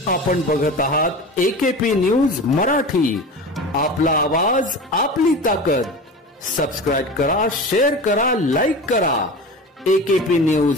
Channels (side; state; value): both; normal; correlation 0.32